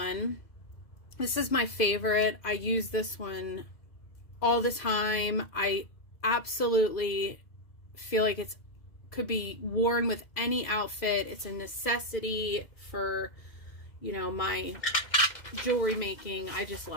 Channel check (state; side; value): late; right; 2.0 ms